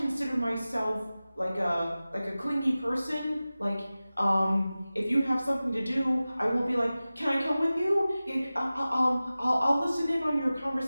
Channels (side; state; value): both; inverted; correlation -0.97